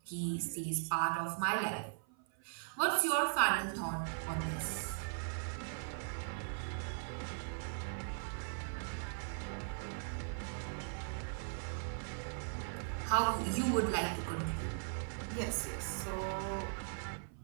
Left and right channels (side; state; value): left; silent; 52 dB below the other